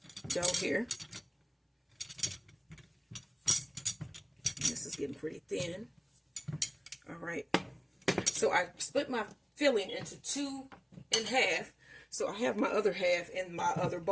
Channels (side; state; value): both; identical; correlation 1.00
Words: dough here. This is getting pretty thin. All right. So I split my filling into 2 and half. So I have my other half in my other